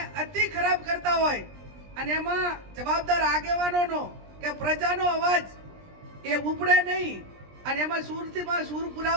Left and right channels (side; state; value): left; late; 20 ms